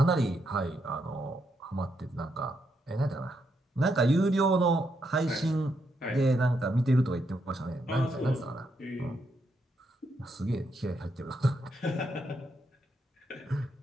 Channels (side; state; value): both; normal; correlation 0.79